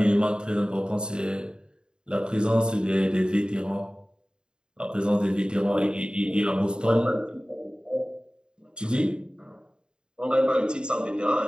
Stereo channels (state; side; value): late; left; 0.049 ms